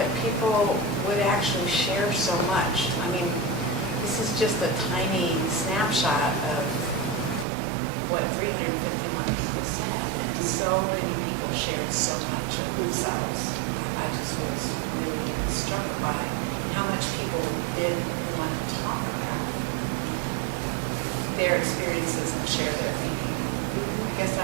people would actually share so much. I mean, this is just a tiny snapshot of what 351 people said, and so many people shared so much of themselves. I just was really struck by how much people did want to talk about their experiences and share their thinking. I guess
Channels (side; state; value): left; drops out; at 7.5 s